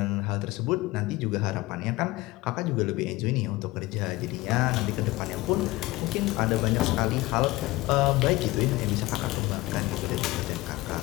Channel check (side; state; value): right; quieter; 19.8 dB